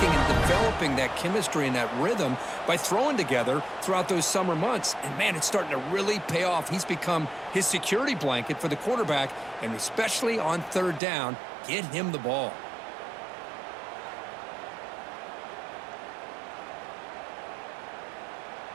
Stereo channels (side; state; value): left; drops out; at 11.0 s